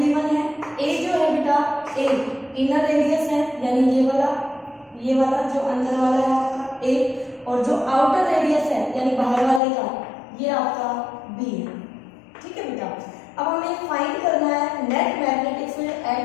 है। ए जो है बेटा, ए इनर रेडियस है, यानी ये वाला जो अंदर वाला है आपका ए, और जो आउटर रेडियस है यानी बाहर वाले का ये आपका बी है, ठीक है बेटा। अब हमें फाइंड करना है net magnetic field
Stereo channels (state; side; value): drops out; right; at 9.6 s